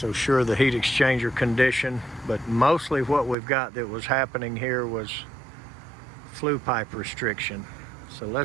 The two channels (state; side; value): drops out; left; at 3.4 s